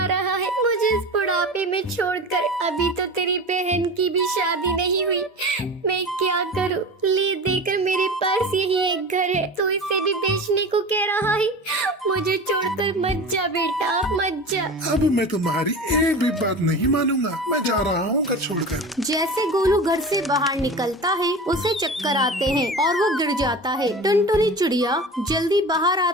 रहा है? मुझे इस बुढ़ापे में छोड़कर। अभी तो तेरी बहन की भी शादी नहीं हुई। मैं क्या करूं? ले देकर मेरे पास यही एक घर है, तो इसे भी बेचने को कह रहा है। मुझे छोड़कर मत जा बेटा, मत जा। अब मैं तुम्हारी एक भी बात नहीं मानूंगा। मैं जा रहा हूँ घर छोड़कर। जैसे गोलू घर से बाहर निकलता है उसे चक्कर आते हैं और वो गिर जाता है। टुनटुनी चिड़िया जल्दी बाहर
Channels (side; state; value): both; normal; correlation 0.32